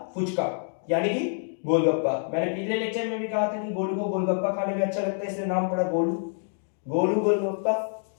फुचका, यानी कि गोलगप्पा। मैंने पिछले लेक्चर में भी कहा था कि गोलू को गोलगप्पा खाने में अच्छा लगता है, इसलिए नाम पड़ा गोलू, गोलू गोलगप्पा।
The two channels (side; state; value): right; silent; digital silence